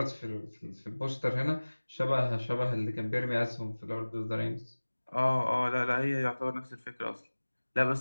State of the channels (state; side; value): inverted; both; correlation -1.00